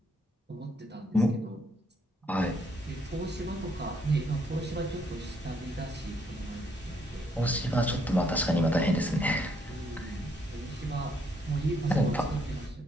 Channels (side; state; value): both; normal; correlation 0.70